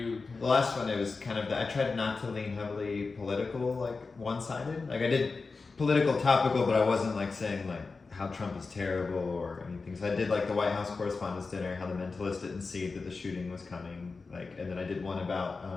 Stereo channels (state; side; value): quieter; right; 4.2 dB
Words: The last one, it was kind of, I tried not to lean heavily political, like one-sided. Like I did political topical, but I wasn't like saying like how Trump is terrible or anything. So I did like the White House Correspondents' Dinner, how the Mentalist didn't see that the shooting was coming. Like, and then I did one about